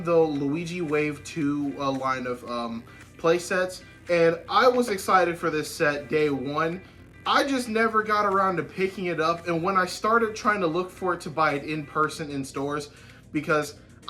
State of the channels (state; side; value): identical; both; correlation 1.00